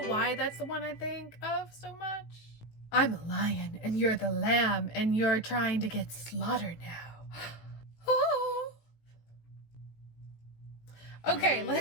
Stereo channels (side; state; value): right; late; 18 ms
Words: why that's the one I think of so much. I'm a lion and you're the lamb and you're trying to get slaughtered now. Okay,